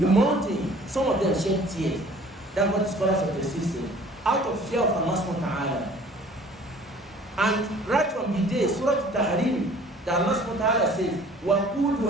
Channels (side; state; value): both; normal; correlation 0.51